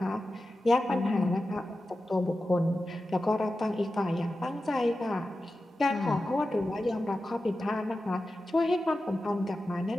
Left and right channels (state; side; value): normal; both; correlation 0.93